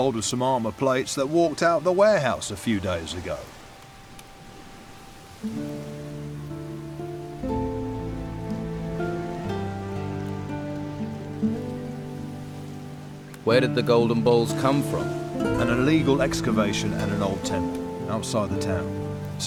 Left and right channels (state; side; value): identical; both; correlation 1.00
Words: of some armor plates that walked out the warehouse a few days ago. Where did the golden balls come from? An illegal excavation at an old temple outside the town.